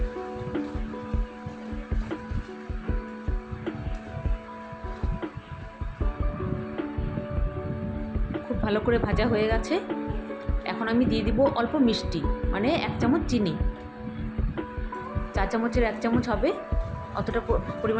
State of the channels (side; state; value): both; identical; correlation 1.00